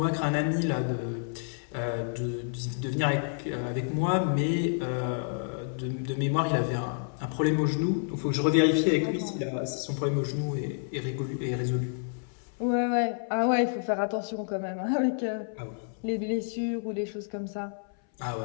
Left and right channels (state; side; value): silent; right; 58 dB below the other